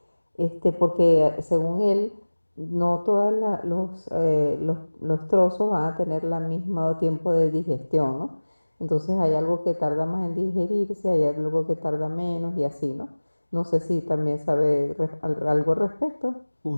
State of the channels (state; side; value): inverted; both; correlation -1.00